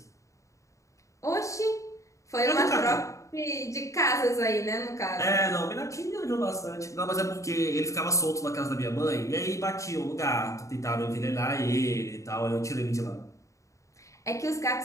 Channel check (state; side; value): late; right; 0.15 ms